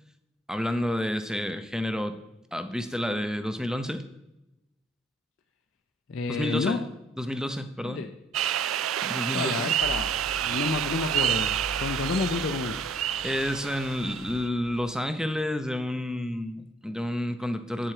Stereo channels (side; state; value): both; normal; correlation 0.62